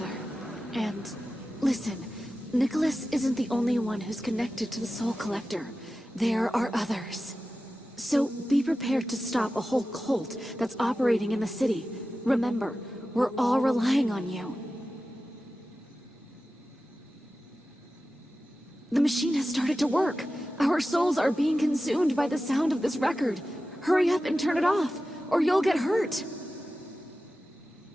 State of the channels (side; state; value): both; normal; correlation 0.94